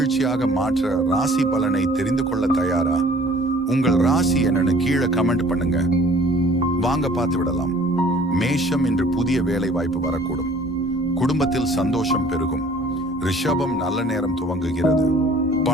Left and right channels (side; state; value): both; normal; correlation 0.53